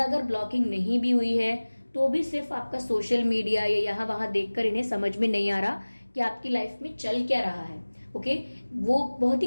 अगर ब्लॉकिंग नहीं भी हुई है तो भी सिर्फ आपका सोशल मीडिया या यहाँ वहां देखकर इन्हें समझ में नहीं आ रहा कि आपकी लाइफ में चल क्या रहा है। ओके, वो बहुत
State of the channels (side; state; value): both; inverted; correlation -1.00